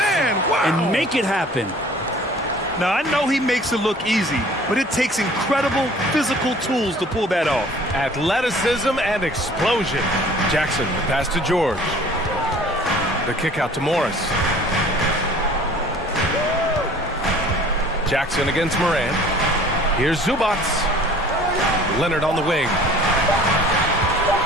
Wow. And make it happen. Now, I know he makes it look easy, but it takes incredible physical tools to pull that off. Athleticism and explosion. Jackson, the pass to George. The kick out to Morris. Jackson against Morant. Here's Zubac. Leonard on the wing.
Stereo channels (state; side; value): normal; both; correlation 0.50